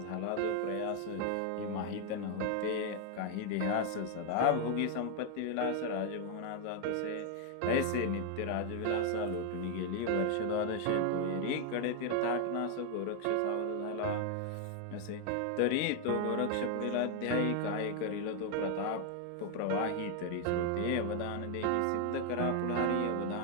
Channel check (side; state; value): both; different; correlation 0.01